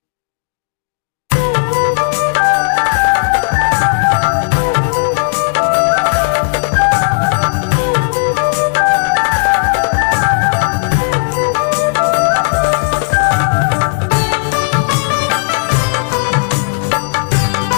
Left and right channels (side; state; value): right; silent; digital silence